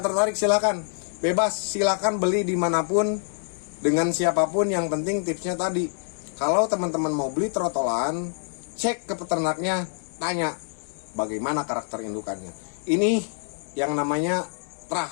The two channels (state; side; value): silent; right; 61 dB below the other